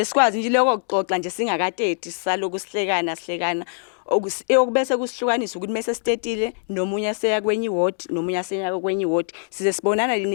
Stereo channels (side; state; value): right; silent; digital silence